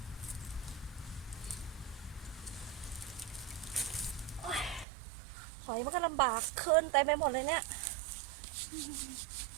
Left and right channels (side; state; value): left; drops out; at 4.9 s